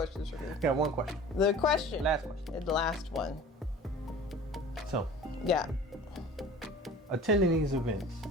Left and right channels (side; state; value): both; normal; correlation 0.42